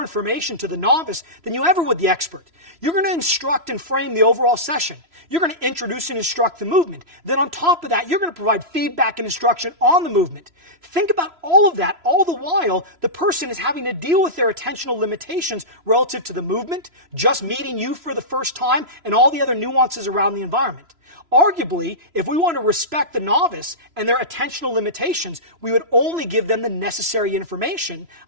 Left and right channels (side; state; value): left; late; 3.0 ms